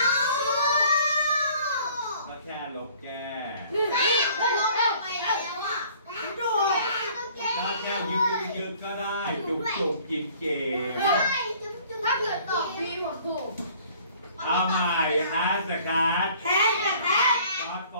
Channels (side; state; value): both; inverted; correlation -0.54